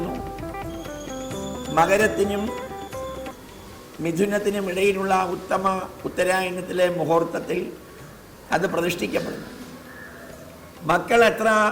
മകരത്തിനും മിഥുനത്തിനും ഇടയിലുള്ള ഉത്തമ ഉത്തരായണത്തിലെ മുഹൂർത്തത്തിൽ അത് പ്രതിഷ്ഠിക്കപ്പെടുന്നു. മക്കൾ എത്ര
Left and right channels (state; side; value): identical; both; correlation 1.00